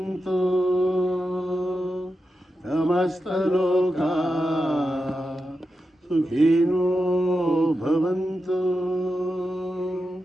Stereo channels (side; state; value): both; normal; correlation 0.89